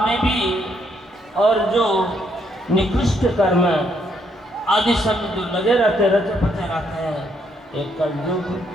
में भी और जो निकृष्ट कर्म आदि सब जो लगे रहते रचे पचे रहते हैं एक कलयुग।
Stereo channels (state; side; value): normal; both; correlation 0.72